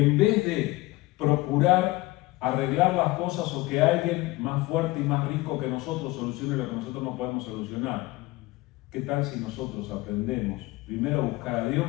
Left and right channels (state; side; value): quieter; right; 20.2 dB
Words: vez de procurar arreglar las cosas o que alguien más fuerte y más rico que nosotros solucione lo que nosotros no podemos solucionar, ¿qué tal si nosotros aprendemos primero a buscar a